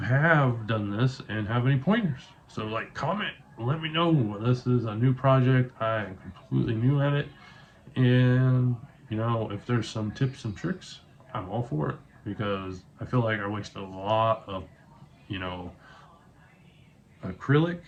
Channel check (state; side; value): identical; both; correlation 1.00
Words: done this and have any pointers. So like, comment, let me know. This is a new project, I'm completely new at it, and you know, if there's some tips and tricks, I'm all for it, because I feel like I wasted a lot of, you know, acrylic.